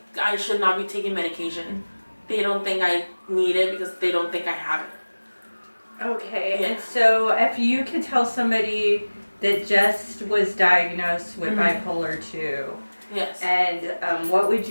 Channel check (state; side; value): inverted; both; correlation -1.00